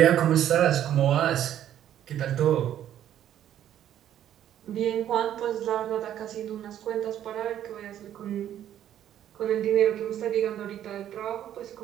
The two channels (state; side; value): quieter; left; 11.0 dB